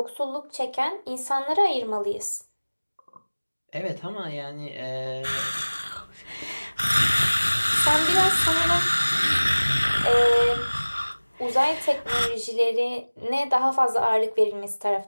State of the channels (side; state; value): both; inverted; correlation -1.00